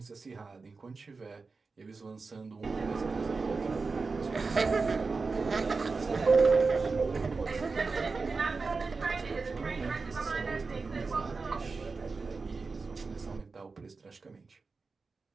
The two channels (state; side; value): quieter; left; 4.3 dB